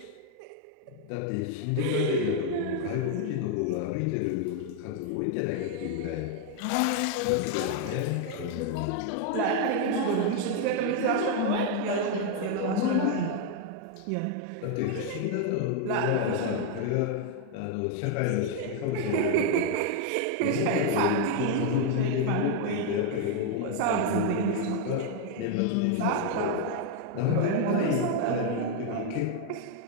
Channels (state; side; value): different; both; correlation 0.01